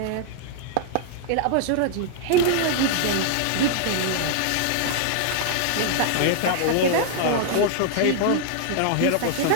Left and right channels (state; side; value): different; both; correlation 0.00